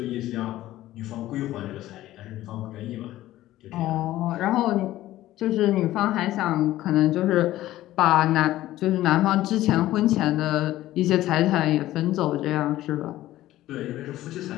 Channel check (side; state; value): right; quieter; 15.0 dB